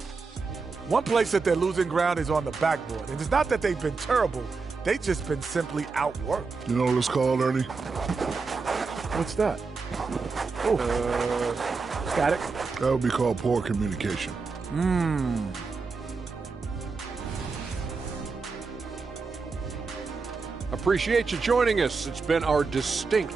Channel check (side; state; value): left; quieter; 4.5 dB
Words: One place that they're losing ground is on the backboard. And it's not that they've been terrible. They've just been simply outworked. You know what it's called, Ernie? What's that? Oh, static. That would be called poor communication. Appreciate you joining us. It's been our distinct